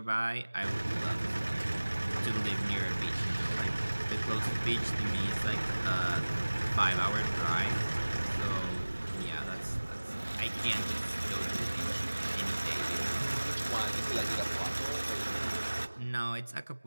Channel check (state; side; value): inverted; both; correlation -1.00